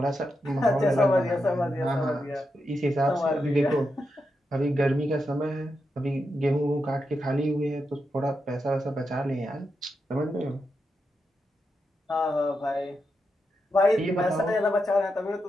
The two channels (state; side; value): normal; both; correlation 0.86